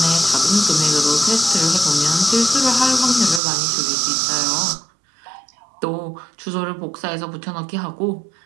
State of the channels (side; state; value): left; drops out; at 3.4 s